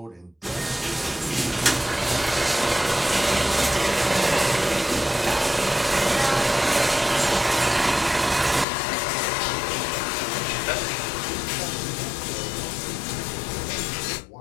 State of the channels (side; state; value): right; drops out; at 8.7 s